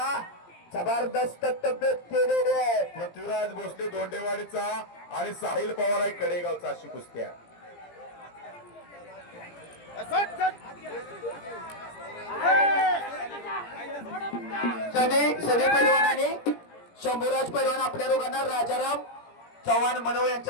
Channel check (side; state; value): right; late; 17 ms